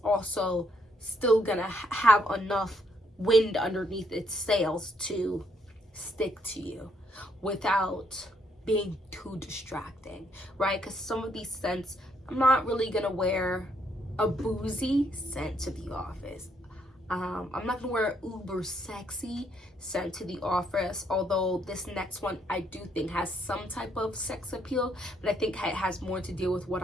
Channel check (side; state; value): both; normal; correlation 0.72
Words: also still gonna have enough wind underneath its sails to stick to you without being too distracting, right? Because some of these scents, I'm not really gonna wear a boozy scent to the office. I'm not gonna wear uber sexy scent to the office, although this next one I do think has some type of sex appeal, but I think it has more to deal with what